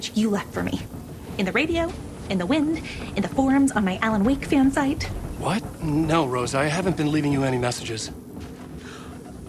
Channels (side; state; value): both; identical; correlation 1.00